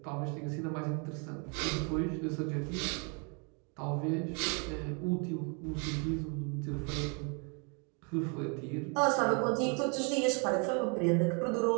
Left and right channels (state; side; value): quieter; left; 35.6 dB